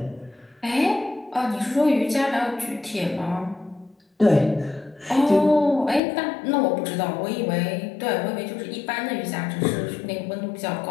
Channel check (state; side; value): drops out; right; at 6.0 s